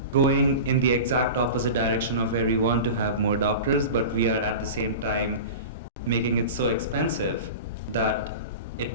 going in the exact opposite direction of where we want to have more doctors, but we are at the same time making it so expensive that it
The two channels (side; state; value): both; inverted; correlation -0.31